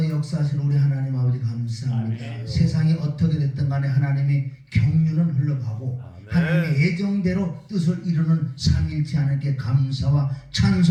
역사하신 우리 하나님 아버지 감사합니다. 세상이 어떻게 됐든 간에 하나님의 경륜은 흘러가고 하나님의 예정대로 뜻을 이루는 삼일치 하나님께 감사와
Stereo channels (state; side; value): identical; both; correlation 1.00